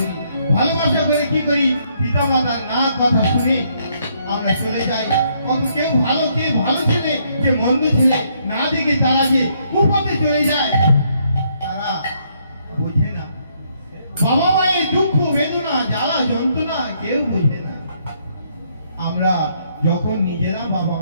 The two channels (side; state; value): both; inverted; correlation -0.71